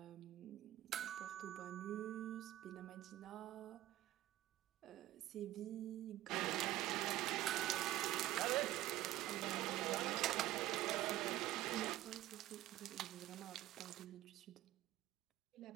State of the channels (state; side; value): quieter; left; 15.0 dB